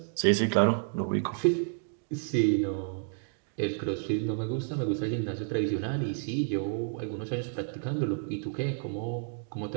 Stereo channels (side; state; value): left; silent; digital silence